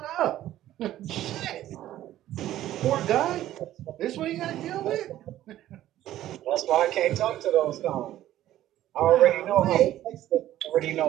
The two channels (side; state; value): left; quieter; 13.4 dB